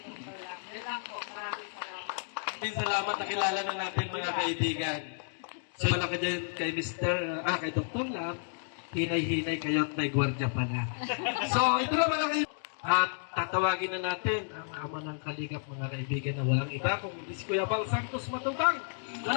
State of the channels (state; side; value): silent; right; digital silence